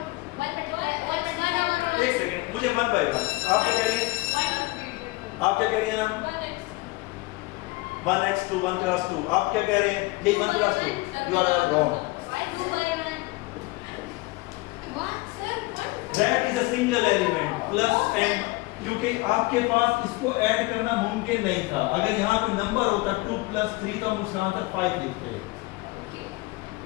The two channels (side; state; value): right; quieter; 22.6 dB